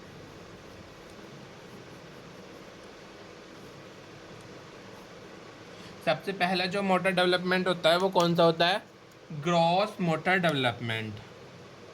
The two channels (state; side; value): identical; both; correlation 1.00